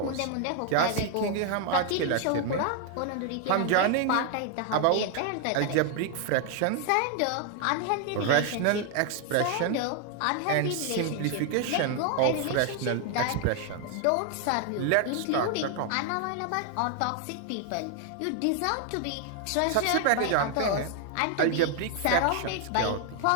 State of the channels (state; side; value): different; both; correlation 0.00